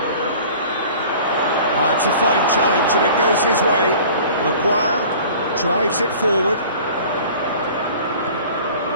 It's a fine challenge and it goes his way. Maguire drives it forward.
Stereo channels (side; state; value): both; inverted; correlation -0.45